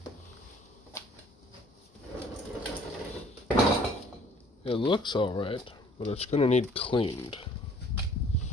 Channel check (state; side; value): normal; both; correlation 0.56